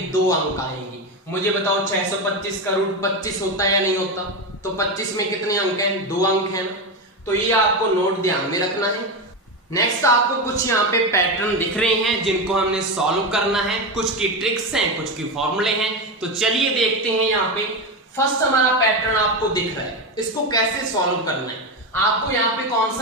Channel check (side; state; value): both; normal; correlation 0.15